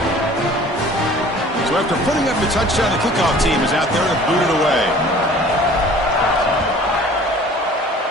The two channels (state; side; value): normal; both; correlation 0.48